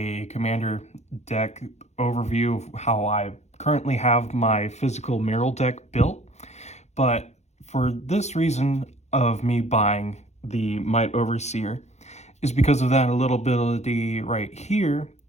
commander deck overview of how I currently have my physical Merrill deck built. But for this reason of me buying the Might Overseer is because of that little ability right here,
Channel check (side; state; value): right; late; 0.32 ms